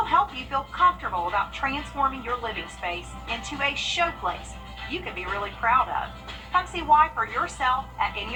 help you feel comfortable about transforming your living space into a showplace you can be really proud of. Come see why for yourself at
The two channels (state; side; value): identical; both; correlation 1.00